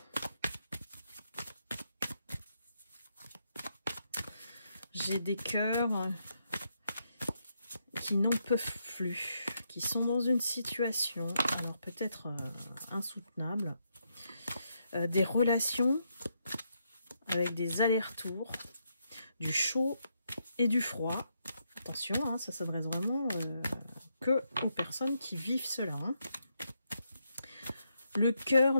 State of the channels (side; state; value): both; inverted; correlation -0.80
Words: J'ai des cœurs qui n'en peuvent plus, qui sont dans une situation, alors peut-être insoutenable, des relations avec des allers-retours, du chaud et du froid. Attention, hein, ça s'adresse vraiment que aux personnes qui vivent cela. Hein. Le cœur,